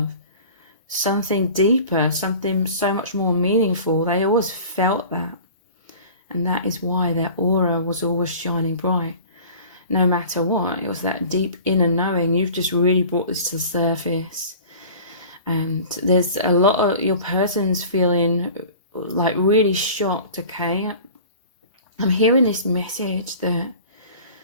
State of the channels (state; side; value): inverted; both; correlation -0.42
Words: something deeper, something so much more meaningful. They always felt that. And that is why their aura was always shining bright. No matter what, it was that deep inner knowing. You've just really brought this to the surface. And there's a lot of your person's feeling like really shocked, okay? I'm hearing this message that,